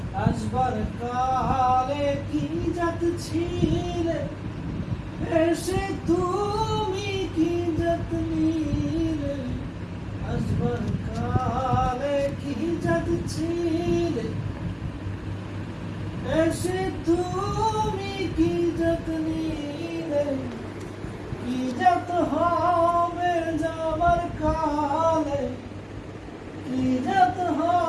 আসবার কালে কি যত ছিলে এসে তুমি কি যত নিলে আসবার কালে কি যত ছিলে এসে তুমি কি যত নিলে কি যত হবে যাবার কালে কি যত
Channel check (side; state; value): both; identical; correlation 1.00